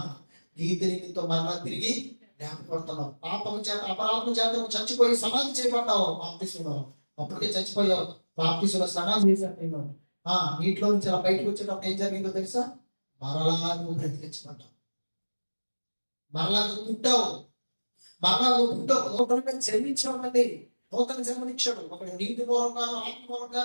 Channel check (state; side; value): inverted; both; correlation -1.00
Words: నీతి నిమిత్తం మరలా తిరిగి లేపబడుతున్నావు. పాపం చేత అపరాధం చేత చచ్చిపోయి సమాధి చేయబడ్డావు. బాప్తిసంలో అప్పటికే చచ్చిపోయావు. బాప్తిసంలో సమాధి చేశాను. నీటిలో నుంచి అలా బయటకు వచ్చేటప్పుడు ఏం జరిగిందో తెలుసా? మరలా నువ్వు బ్రతికించబడ్డావు, మరలా నువ్వు పుట్టావు, మరలా నువ్వు పుట్టావు. నూతనంగా జన్మించామండి. నూతన జన్మనిచ్చాడు. ఒకటి నీటి మూలంగాను ఆత్మ